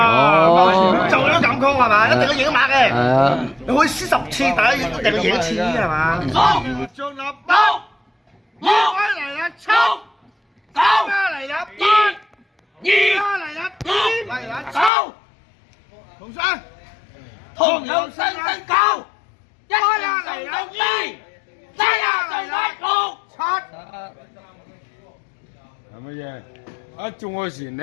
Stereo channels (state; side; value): drops out; right; at 14.9 s